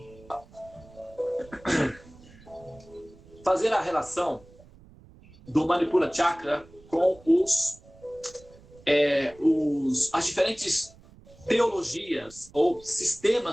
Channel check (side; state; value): right; noise; rumble, 24 dB below the sound